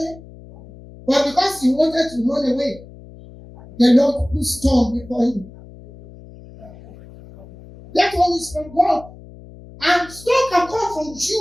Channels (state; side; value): noise; left; hum, 19 dB below the sound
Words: but because he wanted to run away, the Lord put storm before him. That one is from God. And storm can come from